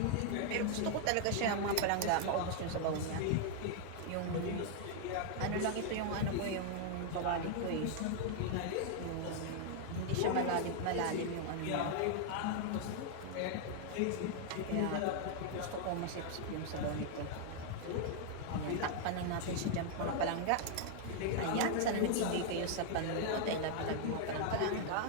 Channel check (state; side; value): different; both; correlation 0.00